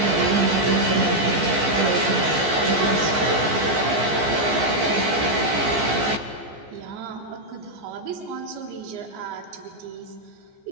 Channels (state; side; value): late; left; 14 ms